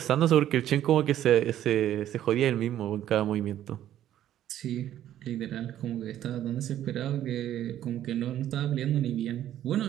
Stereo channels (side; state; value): left; quieter; 11.8 dB